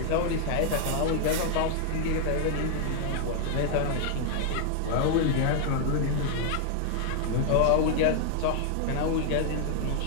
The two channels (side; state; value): both; different; correlation 0.00